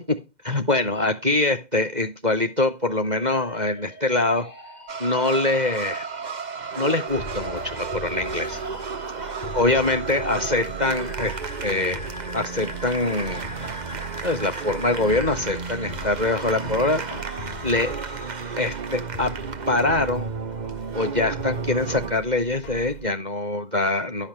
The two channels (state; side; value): late; left; 2.0 ms